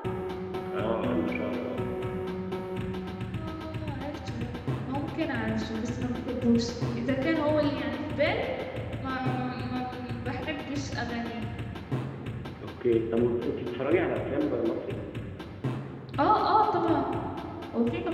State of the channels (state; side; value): identical; both; correlation 1.00